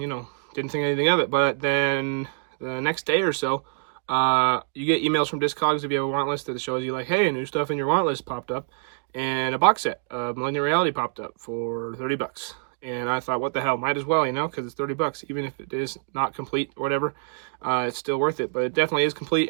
didn't think anything of it. But then the next day or so, you get emails from Discogs if you have a want list that shows you like, hey, new stuff in your want list popped up. And a box set of Malignant Reality popped up for $30. And I thought, what the hell, might as well, because it's $30, even if it is not complete or whatever, it's still worth it. But it definitely is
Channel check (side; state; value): left; silent; digital silence